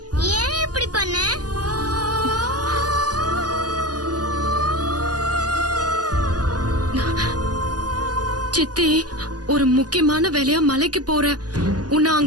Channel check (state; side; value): late; left; 0.68 ms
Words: ஏன் இப்படி பண்ண? சித்தி, ஒரு முக்கியமான வேலையா மலைக்கு போற. உன்னை